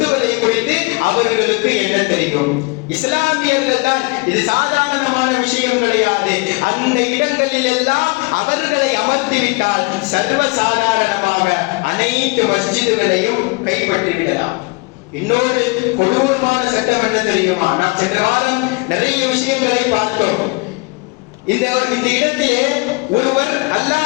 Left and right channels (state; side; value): quieter; right; 27.4 dB